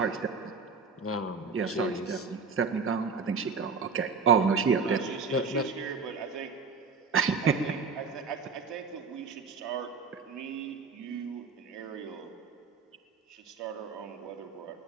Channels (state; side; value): quieter; left; 4.9 dB